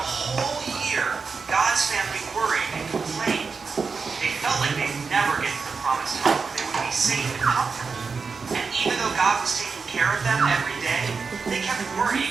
year, God's family worried and complained. They felt like they'd never get to the promised home where they would be safe and comfortable. And even though God was taking care of them every day, they kept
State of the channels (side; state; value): left; quieter; 5.0 dB